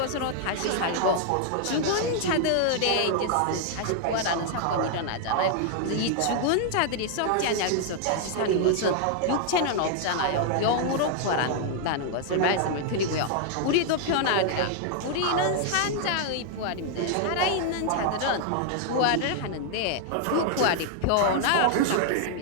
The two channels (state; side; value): different; both; correlation 0.00